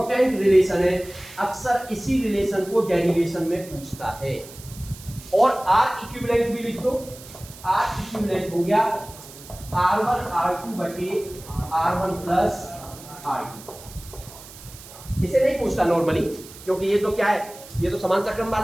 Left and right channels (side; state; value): right; noise; hiss, 18 dB below the sound